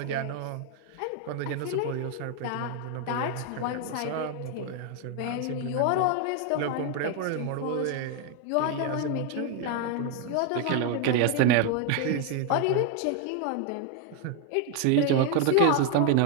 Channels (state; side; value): different; both; correlation 0.01